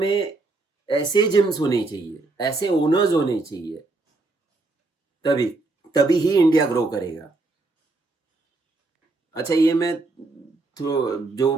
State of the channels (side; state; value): left; quieter; 3.3 dB